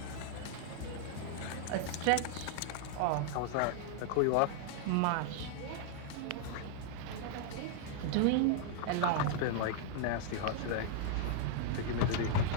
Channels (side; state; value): both; different; correlation -0.01